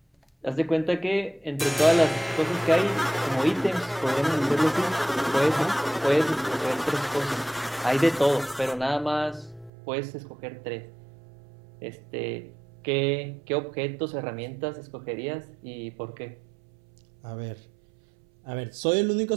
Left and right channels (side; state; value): left; drops out; at 9.7 s